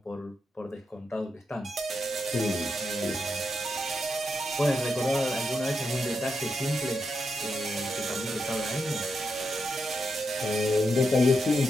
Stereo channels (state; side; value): normal; both; correlation 0.84